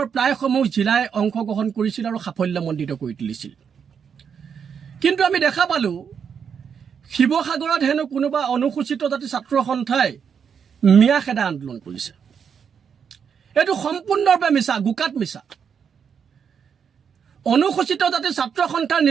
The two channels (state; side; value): quieter; left; 7.1 dB